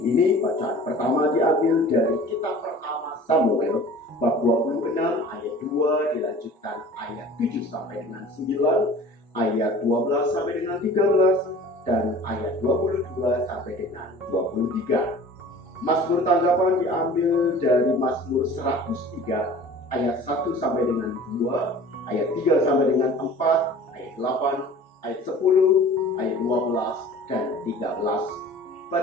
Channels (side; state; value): both; normal; correlation 0.44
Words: ini, bacaan pertama diambil dari kitab pertama Samuel, bab 26 ayat 2, dilanjutkan ayat 7 sampai dengan 9, ayat 12 sampai dengan 13, dan ayat 22 sampai dengan 23. Mazmur tanggapan diambil dari Mazmur 103 ayat 1 sampai dengan 2, ayat 3 sampai dengan 4, ayat 8, ayat 10, ayat 12, dan 13.